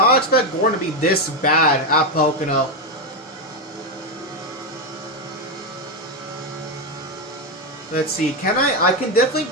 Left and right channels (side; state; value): both; normal; correlation 0.07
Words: expect Gordon to be this bad at Pocono. Let's see. Can I can definitely